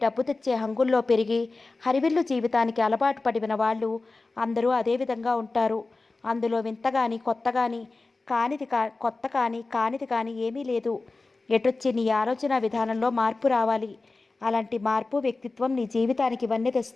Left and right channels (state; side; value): quieter; right; 3.5 dB